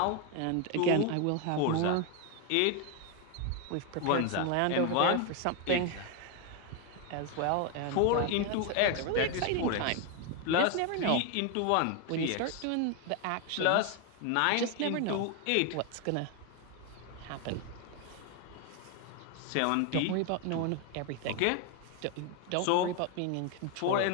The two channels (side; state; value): both; different; correlation 0.01